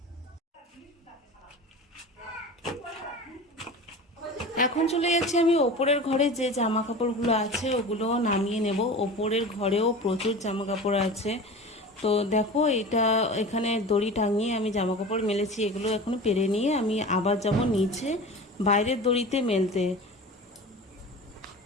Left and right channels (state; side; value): normal; both; correlation 0.34